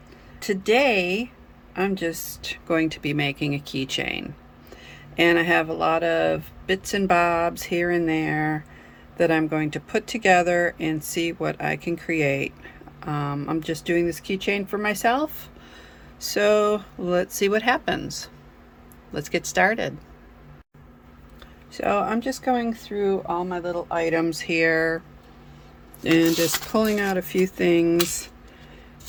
Today I'm just going to be making a keychain, and I have a lot of bits and bobs here and there that I'm going to put together and see what I can create. I'm just doing this keychain for myself, so let's see what happens. Let's get started. So I'm just going through all my little items here and just pulling out a few things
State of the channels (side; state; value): both; identical; correlation 1.00